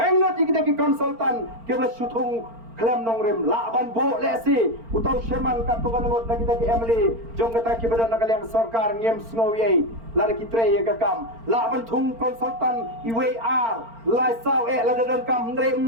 digini ki konsultan kebla sutung klem nongrem la ban bo lesi utau Sherman katuan ngot lagi ki Emily jong kata ki badan nakaliang sarkar ngem sngowie lada kitre ya kakam la ban thung konsultan IWR lai sao la dadan kam ndre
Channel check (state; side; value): late; left; 4.4 ms